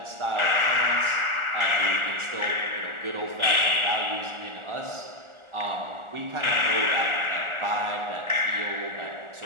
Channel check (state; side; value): late; left; 1.4 ms